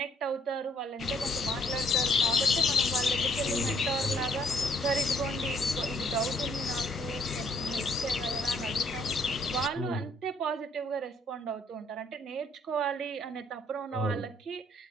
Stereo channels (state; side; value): normal; both; correlation 0.64